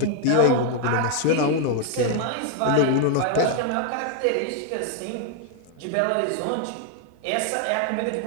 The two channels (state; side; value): different; both; correlation 0.00